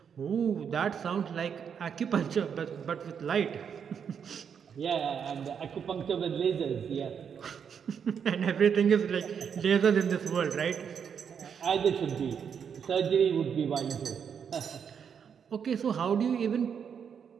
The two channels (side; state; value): left; quieter; 7.3 dB